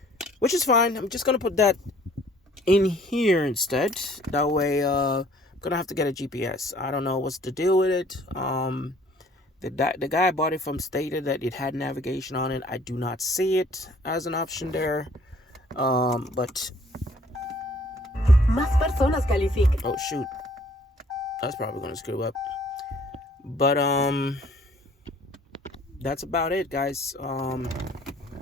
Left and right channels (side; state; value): both; normal; correlation 0.57